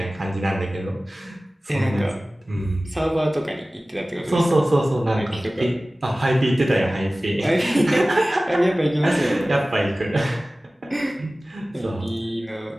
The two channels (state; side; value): normal; both; correlation 0.97